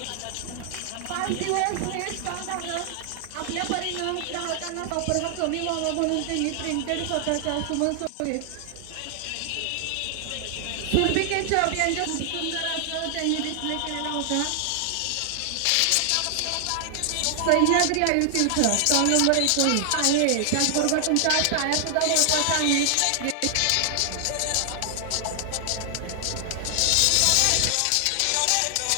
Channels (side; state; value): both; different; correlation 0.00